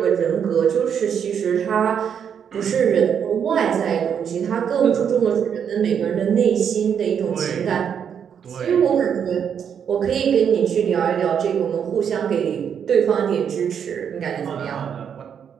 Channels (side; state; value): left; quieter; 7.9 dB